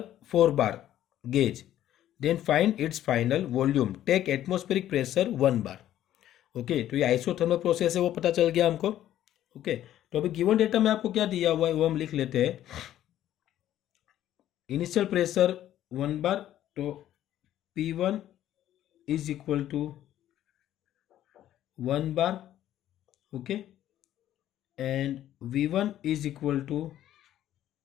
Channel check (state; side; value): quieter; right; 12.3 dB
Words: 4 bar gauge, then find its final volume. Take atmospheric pressure 1 bar. Okay, तो ये isothermal process है, वो पता चल गया हमको। Okay, तो अभी गिवन डेटा में आपको क्या दिया हुआ है वो हम लिख लेते हैं। इनिशियल प्रेशर 1 bar, तो P1 is equal to 1 bar. Okay, and V1 is equal to